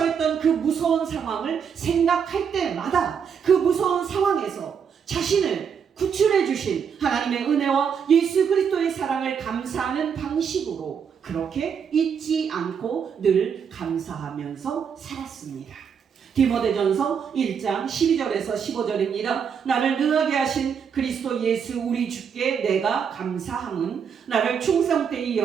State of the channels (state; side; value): quieter; left; 7.1 dB